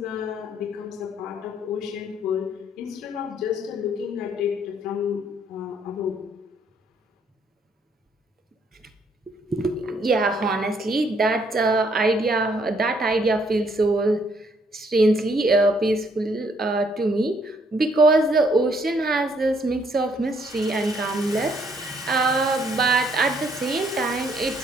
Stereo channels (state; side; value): normal; both; correlation 0.68